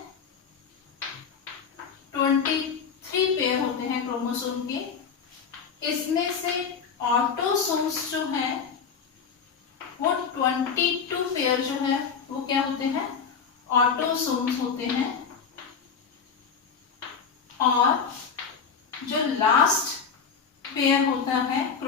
23 पेयर होते हैं क्रोमोसोम के। इसमें से ऑटोसोम्स जो है वो 22 पेयर जो है वो क्या होते हैं? ऑटोसोम्स होते हैं। और जो लास्ट पेयर होता है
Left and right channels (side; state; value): right; quieter; 6.2 dB